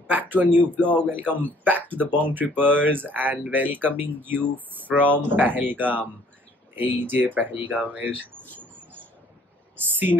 back to a new vlog. Welcome back to the Bong Trippers and welcoming you from Pahalgam. এই যে পেহেলগামের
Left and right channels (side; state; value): both; normal; correlation 0.59